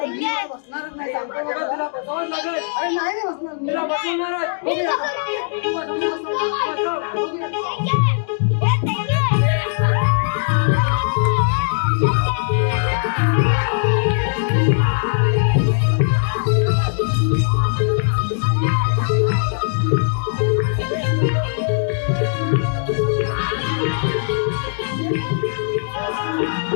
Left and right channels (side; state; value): right; silent; digital silence